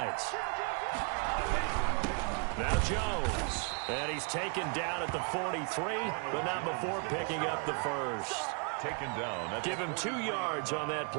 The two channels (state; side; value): quieter; left; 36.4 dB